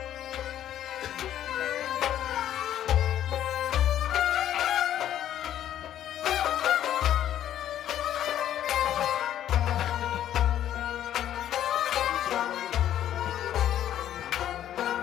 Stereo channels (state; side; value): quieter; right; 11.3 dB